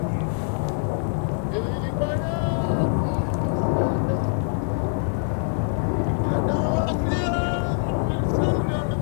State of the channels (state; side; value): silent; right; digital silence